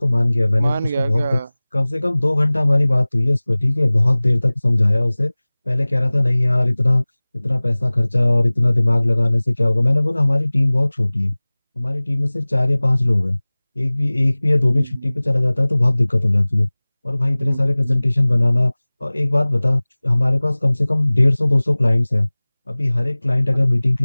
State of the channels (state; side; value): inverted; both; correlation -1.00